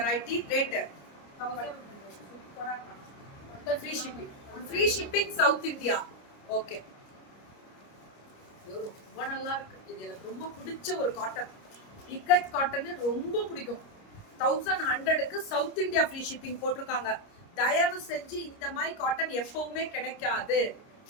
rate free shipping south India. Okay, ரொம்ப நல்லா இருக்கு. இது எனக்கு ரொம்ப பிடிச்ச ஒரு காட்டன். இக்கட் காட்டன் ரொம்ப பிடிக்கும். 1100க்கு சவுத் இந்தியா ஃப்ரீ ஷிப்பிங் போட்டிருக்காங்க. தயவு செஞ்சு இந்த மாதிரி காட்டன் எப்பவுமே கிடைக்காது.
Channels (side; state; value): right; late; 29 ms